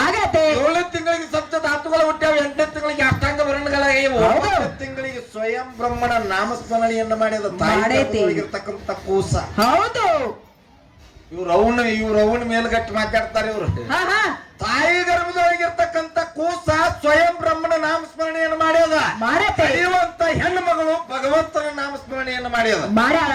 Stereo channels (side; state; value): both; identical; correlation 1.00